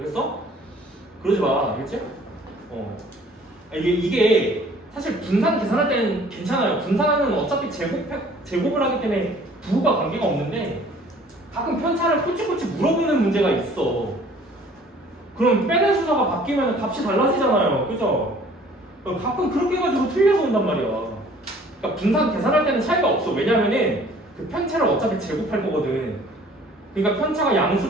그러지 마. 알겠지? 이게 사실 분산 계산할 때는 괜찮아요. 분산은 어차피 제곱을 하기 때문에 부호가 관계가 없는데 가끔 편차를 꼬치꼬치 물어보는 문제가 있어. 그럼 빼는 순서가 바뀌면 값이 달라지잖아요. 그죠? 가끔 그렇게 해가지고 틀려서 온단 말이야. 그러니까 분산 계산할 때는 차이가 없어. 왜냐면은 그 편차를 어차피 제곱할 거거든. 그러니까 편차가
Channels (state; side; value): normal; both; correlation 0.53